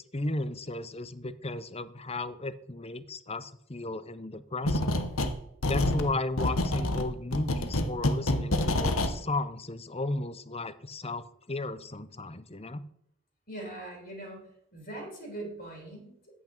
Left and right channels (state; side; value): normal; both; correlation 0.53